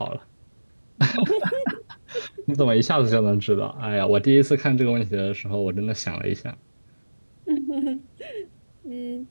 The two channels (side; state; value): both; inverted; correlation -1.00